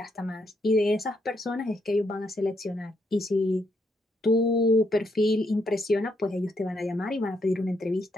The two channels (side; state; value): both; normal; correlation 0.76